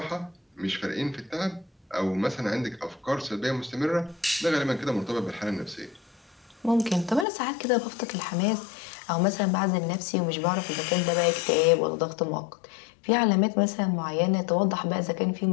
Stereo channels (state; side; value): drops out; right; at 7.2 s